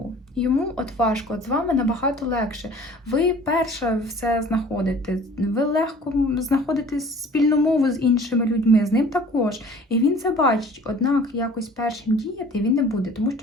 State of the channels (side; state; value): both; normal; correlation 0.48